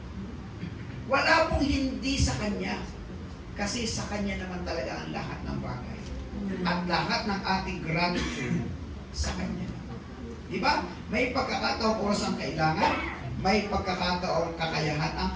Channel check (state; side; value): identical; both; correlation 1.00